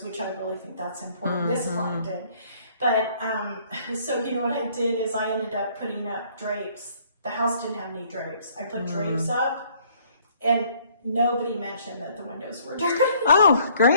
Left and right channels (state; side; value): inverted; both; correlation -0.61